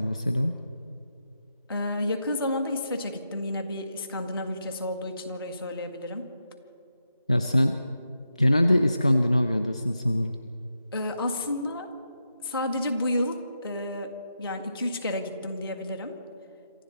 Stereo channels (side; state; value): both; inverted; correlation -0.86